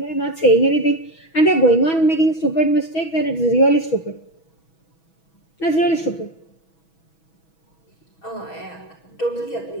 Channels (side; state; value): right; late; 6.2 ms